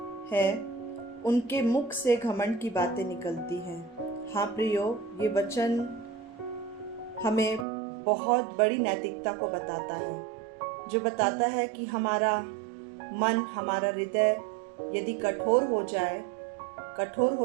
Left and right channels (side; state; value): left; drops out; at 7.7 s